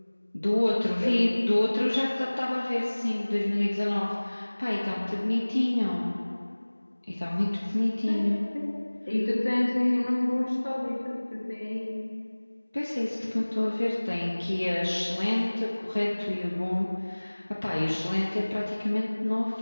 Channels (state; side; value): inverted; both; correlation -1.00